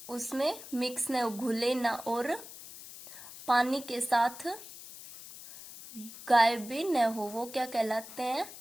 उसमें मिक्स न, घुले ना और पानी के साथ गायब भी न हो, वो क्या कहलाते हैं?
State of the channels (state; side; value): noise; left; hiss, 14 dB below the sound